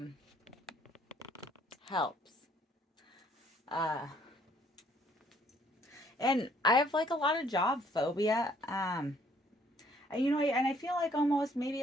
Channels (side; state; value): both; normal; correlation 0.63